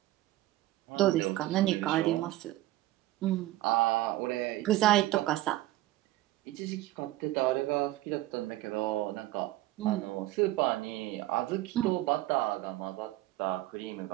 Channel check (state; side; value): quieter; left; 16.3 dB